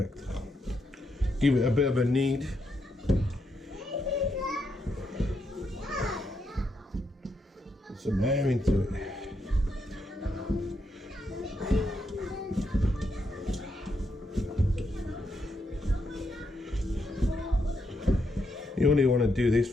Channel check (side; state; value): both; normal; correlation 0.80